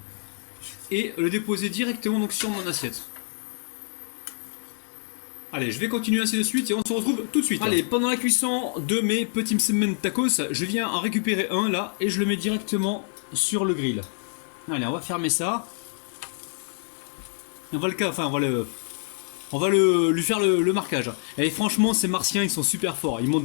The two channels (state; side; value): silent; right; digital silence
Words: Et le déposer directement donc sur mon assiette. Allez, je vais continuer ainsi de suite et on se retrouve tout de suite. Allez, pendant la cuisson de mes petits msemen tacos, je viens en récupérer un là et je le mets directement sur le grill. Allez, on va fermer ça. On va lui faire le marquage. Et franchement, ces martiens, ils sont super forts. Ils m'ont